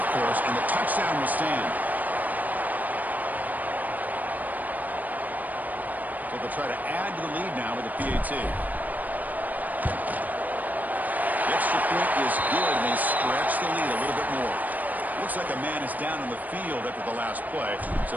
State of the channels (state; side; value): late; left; 0.081 ms